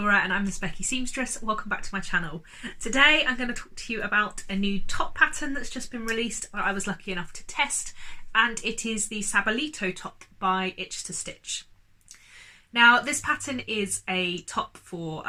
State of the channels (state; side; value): identical; both; correlation 1.00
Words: and I'm the Specky Seamstress. Welcome back to my channel. Today I'm going to talk to you about a new top pattern that's just been released that I was lucky enough to test, and it is the Sabalito top by Itch to Stitch. Now this pattern is a top for